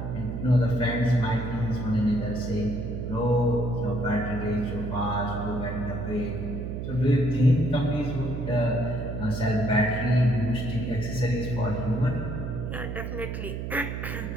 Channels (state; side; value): noise; right; hum, 5 dB below the sound